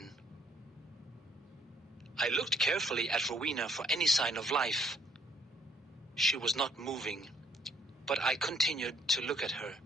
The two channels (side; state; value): both; normal; correlation 0.66